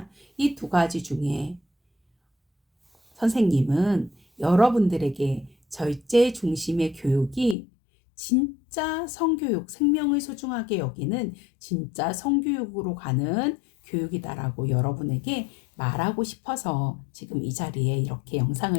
이 두 가지 중에 선생님은 여러분들에게 절제 중심의 교육이 진짜 성교육, 생명을 소중하게 여기는 진짜 성교육으로 가는 교육이다라고 여러분에게 말하고 싶어서 지금 이 자리에 이렇게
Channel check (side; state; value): right; drops out; at 7.6 s